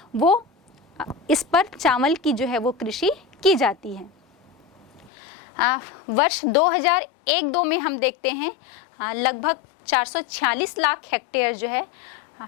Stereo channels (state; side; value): drops out; right; at 5.1 s